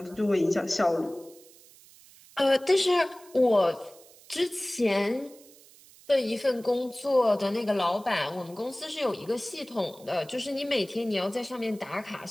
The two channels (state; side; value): noise; right; hiss, 24 dB below the sound